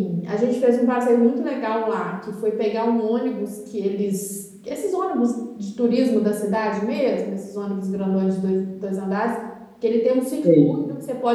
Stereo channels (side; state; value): both; identical; correlation 1.00